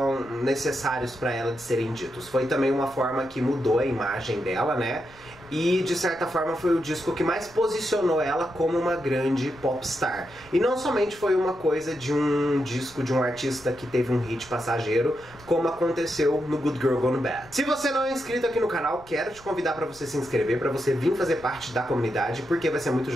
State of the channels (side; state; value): left; noise; rumble, 24 dB below the sound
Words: necessários para ela de serem ditos. Foi também uma forma que mudou a imagem dela, né? E de certa forma foi o disco que mais posicionou ela como uma grande popstar. E não somente foi uma coisa de um disco de um artista que teve um hit passageiro, como aconteceu no Good Girl Gone Bad. Se você não é inscrito aqui no canal, quero te convidar para você se inscrever, para você vir fazer parte da comunidade, porque vai ser muito